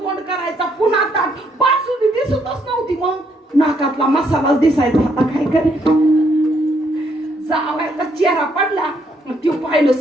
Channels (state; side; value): normal; both; correlation 0.72